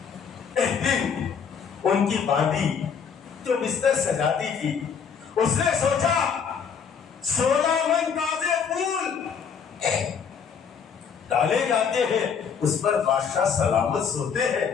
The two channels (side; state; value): right; quieter; 6.7 dB